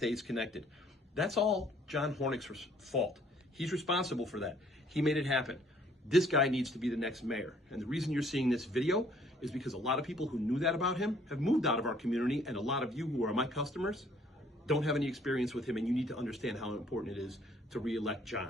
connected. That's all John Hornik's fault. He's responsible for that. He made it happen. This guy needs to be the next mayor. And the reason you're seeing this video is because a lot of people who knew that about him have moved out of our community, and a lot of you who are my customers don't have any experience with him, and you need to understand how important it is to re-elect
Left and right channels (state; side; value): normal; both; correlation 0.61